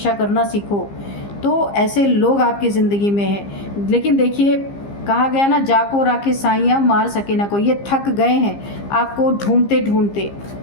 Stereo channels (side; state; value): right; late; 15 ms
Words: करना सीखो। तो ऐसे लोग आपकी ज़िंदगी में हैं। लेकिन देखिए, कहा गया ना, जाको राखे साइयाँ मार सके ना कोई। ये थक गए हैं आपको ढूंढते ढूंढते